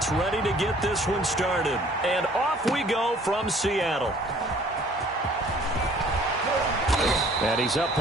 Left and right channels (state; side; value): normal; both; correlation 0.55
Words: ready to get this one started. And off we go from Seattle. And he's up